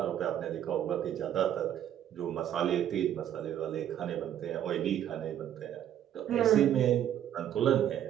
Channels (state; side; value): quieter; left; 10.7 dB